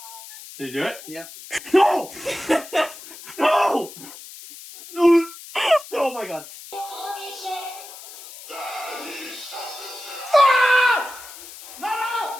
Did you do it? Yeah. No! No! Oh my god.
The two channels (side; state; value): left; noise; hiss, 15 dB below the sound